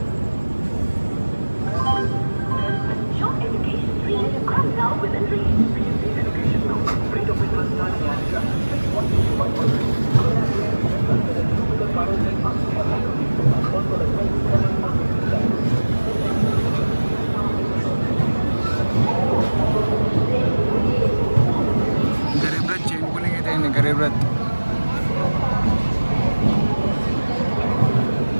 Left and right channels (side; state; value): both; inverted; correlation -1.00